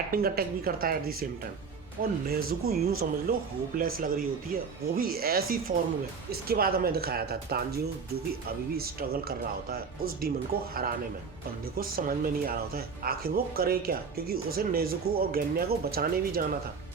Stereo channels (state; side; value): quieter; left; 5.4 dB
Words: अटैक भी करता है एट द सेम टाइम। और नेजुको यूं समझ लो होपलेस लग रही होती है, वो भी ऐसी फॉर्म में। इसके बाद हमें दिखाया था तांजीरो, जो कि अभी भी स्ट्रगल कर रहा होता है उस डीमन को हराने में। बंदे को समझ में नहीं आ रहा होता है आखिर वो करे क्या, क्योंकि उसे नेजुको और गेन्या को बचाने भी जाना था।